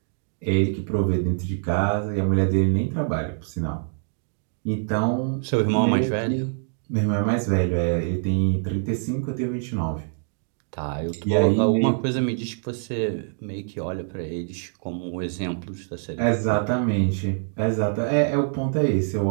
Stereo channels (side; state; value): left; silent; digital silence